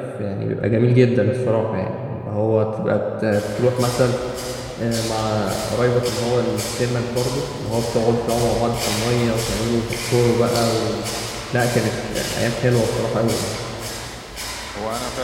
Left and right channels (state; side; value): identical; both; correlation 1.00